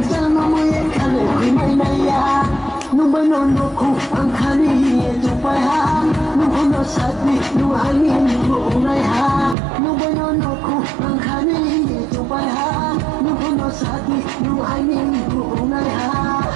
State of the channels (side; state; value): left; drops out; at 9.6 s